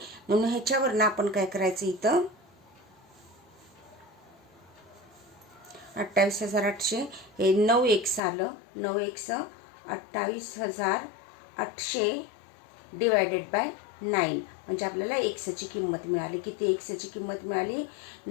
म्हणून ह्याच्यावरनं आपण काय करायचं, इथं 28,800 हे 9x आलं. 9x 28,800 डिवायडेड बाय 9 म्हणजे आपल्याला एक्सची किंमत मिळाली. किती एक्सची किंमत मिळाली?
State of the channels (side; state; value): right; drops out; at 8.2 s